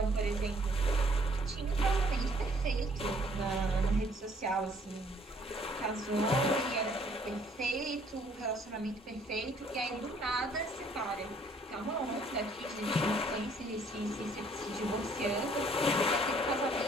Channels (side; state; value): both; normal; correlation 0.62